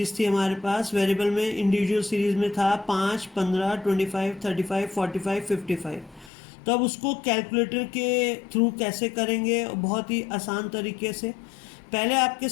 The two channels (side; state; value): right; drops out; at 6.3 s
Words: थी हमारे पास। वेरिएबल में इंडिविजुअल सीरीज में था 5, 15, 25, 35, 45, 55। तो अब उसको कैलकुलेटर के थ्रू कैसे करेंगे? बहुत ही आसान तरीके से। पहले आपके